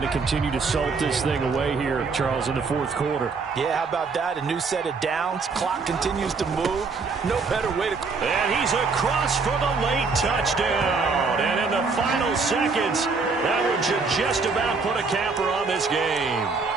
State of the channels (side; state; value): left; quieter; 4.5 dB